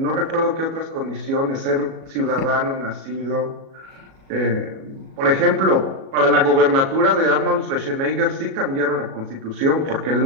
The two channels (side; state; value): left; late; 37 ms